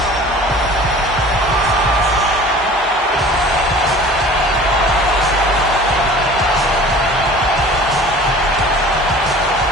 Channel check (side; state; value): both; normal; correlation 0.44